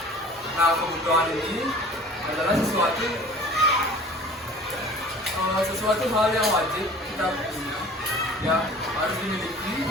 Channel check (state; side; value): normal; both; correlation 0.44